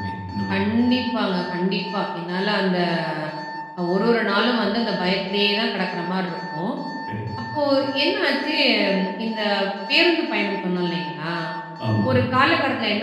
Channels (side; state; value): both; identical; correlation 1.00